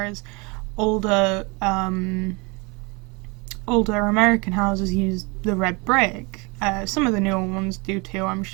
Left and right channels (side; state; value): left; quieter; 28.2 dB